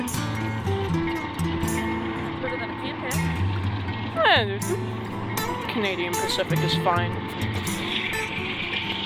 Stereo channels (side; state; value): both; identical; correlation 1.00